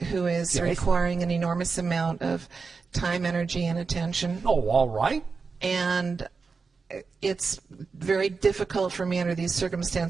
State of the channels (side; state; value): left; quieter; 4.8 dB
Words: who is Yes. requiring an enormous amount of time, energy, and attention. Oh, all right. and it's very difficult for me under these